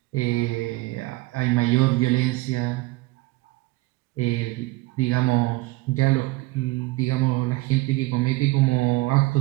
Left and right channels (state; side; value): quieter; left; 20.2 dB